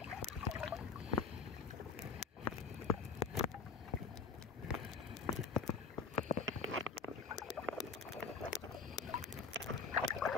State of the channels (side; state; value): right; quieter; 5.0 dB